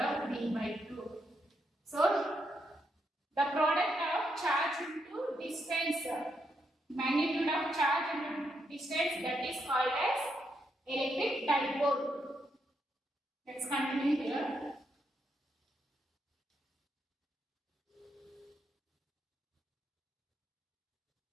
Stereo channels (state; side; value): normal; both; correlation 0.79